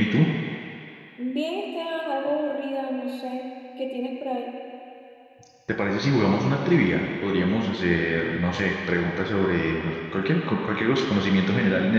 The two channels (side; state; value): both; identical; correlation 1.00